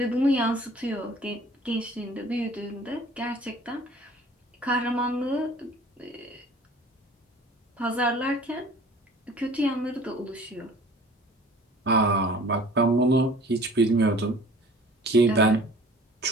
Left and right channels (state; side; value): normal; both; correlation 0.48